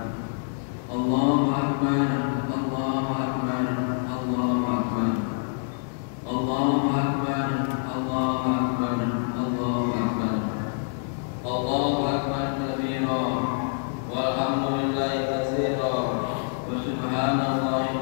Allahu Akbar, Allahu Akbar, Allahu Akbar, Allahu Akbar, Allahu Akbar, Allahu Akbar, Allahu Akbar kabira, walhamdulillahi katsira, wa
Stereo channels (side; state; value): right; silent; digital silence